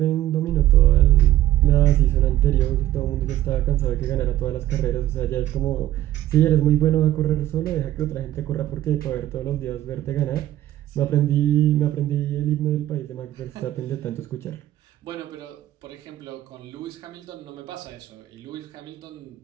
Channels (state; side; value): quieter; left; 13.8 dB